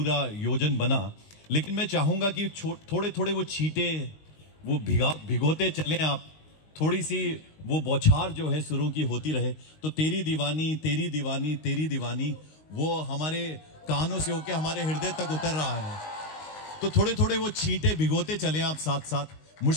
योजन बना, लेकिन मैं चाहूंगा कि थोड़े थोड़े वो छींटे वो भिगोते चलें आप, थोड़ी सी वो बौछार जो है सुरों की होती रहे, तो तेरी दीवानी तेरी दीवानी तेरी दीवानी वो हमारे कानों से होके हमारे हृदय तक उतर रहा है। तो थोड़े थोड़े वो छींटे भिगोते चलें आप साथ साथ।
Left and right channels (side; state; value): right; late; 19 ms